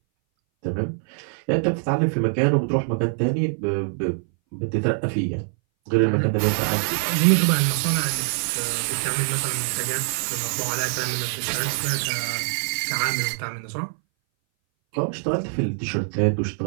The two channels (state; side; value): silent; left; 60 dB below the other